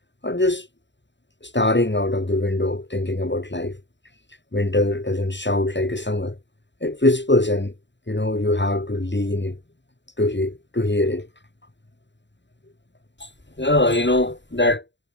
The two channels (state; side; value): late; right; 0.52 ms